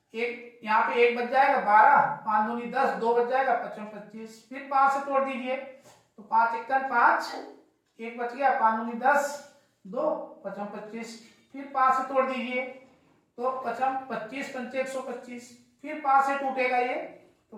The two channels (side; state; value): both; identical; correlation 1.00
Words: एक यहाँ पे 1 बच जाएगा, 12, 5 दूनी 10, 2 बच जाएगा, 55 25, फिर 5 से तोड़ दीजिए, तो 5 × 5, 1 बच गया, 5 दूनी 10, 2, 55 25, फिर 5 से तोड़ दीजिए, तो 55 25 पंचे 125, फिर 5 से टूटेगा ये, तो